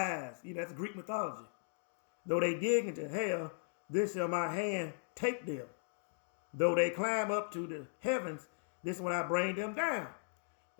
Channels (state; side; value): silent; right; digital silence